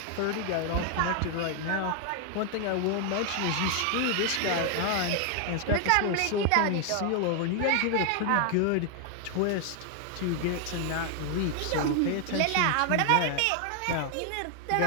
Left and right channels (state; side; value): different; both; correlation 0.00